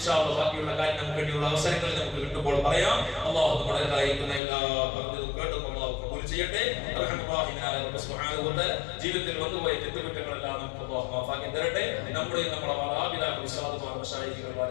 അല്ലാഹ് ബാക്കിയുള്ള കാര്യം നമുക്ക് വേണ്ടിയുള്ള അവസരങ്ങളിൽ നമുക്ക് കിട്ടുമ്പോൾ പറയാം. അല്ലാഹു നമ്മുടെ കാര്യക്കുന്ന എല്ലാ പറഞ്ഞതും കേട്ടും അല്ലാഹു കബൂൽ ചെയ്യട്ടെ. റഹ്മാനായ റബ്ബ് സുബ്ഹാനഹു വ തആല ജീവിതത്തിൽ വന്നുപോയ തെറ്റുകുറ്റങ്ങളെല്ലാം നമുക്ക് അല്ലാഹു മാഫാക്കി തരട്ടെ. നമ്മുടെ മാതാപിതാക്കൾ, ഉസ്താദുമാർ, മശായിഖുകൾ,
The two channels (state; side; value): drops out; right; at 4.4 s